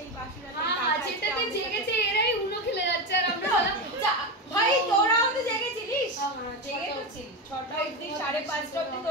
বাসরাতের টাকা হ্যাঁ, যেটাতে জেগেছে এরাই উনো খেলে যাচ্ছে আর আমরা বললাম ভাই তোরাও তো জেগেছিলিস? জেগে তো ছিল 6টা অবধি, 5:30 অবধি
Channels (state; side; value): normal; both; correlation 0.17